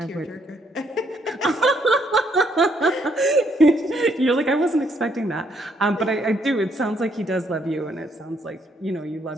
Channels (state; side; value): normal; both; correlation 0.71